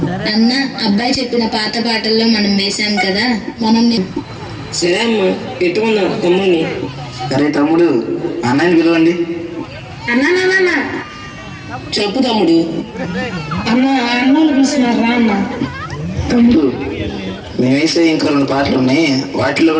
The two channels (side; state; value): both; identical; correlation 1.00